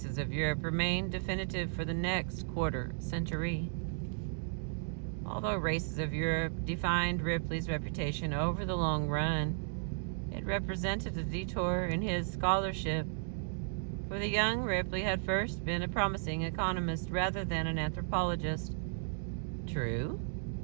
of Europe remained definitive for the next quarter century. Although Races of Europe defined Ripley's reputation over the long run, it represented a detour in his scholarship, for the young Ripley had first been a promising economist rather than an anthropologist. True,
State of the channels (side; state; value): left; silent; digital silence